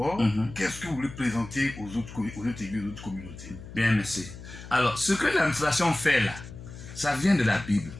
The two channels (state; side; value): noise; left; hum, 14 dB below the sound